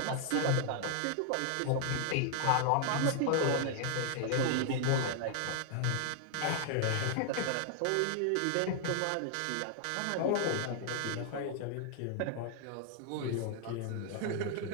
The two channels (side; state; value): both; different; correlation 0.00